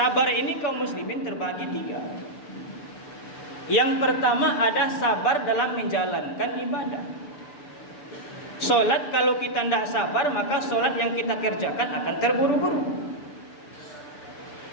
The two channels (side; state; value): right; late; 6.8 ms